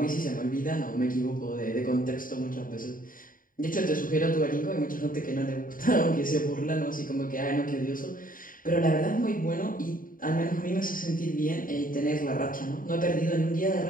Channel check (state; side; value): late; right; 0.40 ms